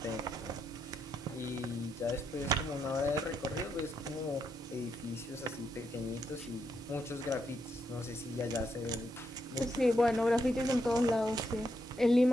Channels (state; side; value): normal; both; correlation 0.80